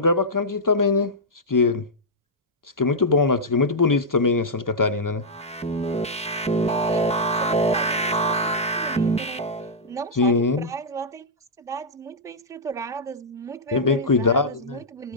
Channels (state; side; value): normal; both; correlation -0.09